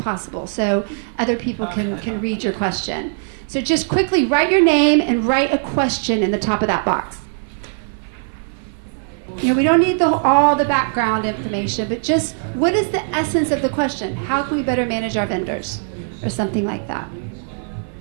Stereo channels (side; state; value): left; silent; 57 dB below the other